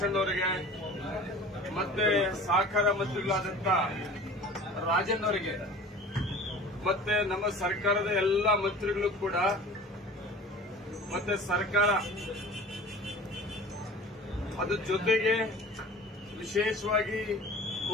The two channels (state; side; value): normal; both; correlation 0.41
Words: ಅಣ್ಣವರಿಗೆ, ಮತ್ತೆ ಸಹಕಾರ ಮಂತ್ರಿಗಳಾದಂಥ ರಾಜನ್ ಅವರಿಗೆ, ಮತ್ತೆ ನಮ್ಮ ಸರ್ಕಾರದ ಎಲ್ಲ ಮಂತ್ರಿಗಳು ಕೂಡ, ಮತ್ತೆ ಸರ್ಕಾರ ಅದ್ರ ಜೊತೆಗೆ ವಿಶೇಷವಾಗಿ